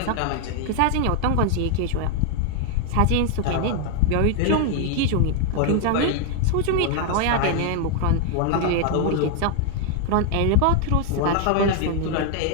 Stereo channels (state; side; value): different; both; correlation 0.00